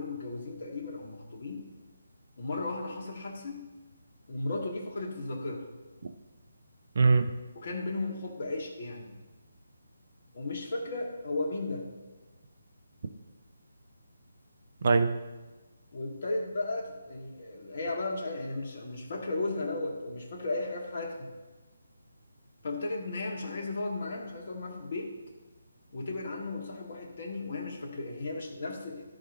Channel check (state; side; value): inverted; both; correlation -0.83